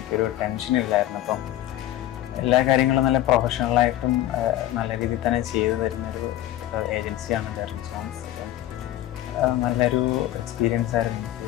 ടെൻഷൻ ഇല്ലായിരുന്നു. അപ്പം എല്ലാ കാര്യങ്ങളും നല്ല പ്രൊഫഷണലായിട്ടും നല്ല രീതിയിൽ തന്നെ ചെയ്തു തരുന്നൊരു ഏജൻസിയാണ് ഡെറിക് ജോൺസ്. നല്ലൊരു എക്സ്പീരിയൻസ് ആയിരുന്നു എനിക്ക്.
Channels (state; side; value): quieter; right; 13.7 dB